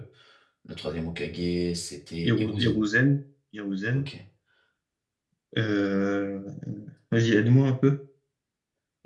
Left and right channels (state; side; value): identical; both; correlation 1.00